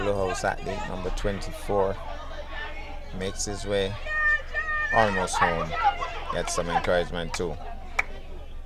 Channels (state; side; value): identical; both; correlation 1.00